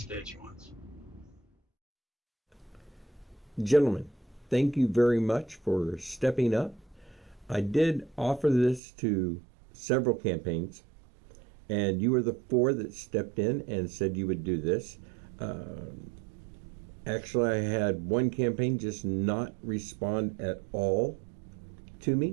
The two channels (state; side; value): drops out; left; at 8.8 s